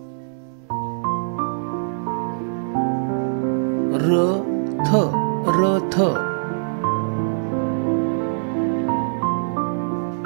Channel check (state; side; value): silent; left; 64 dB below the other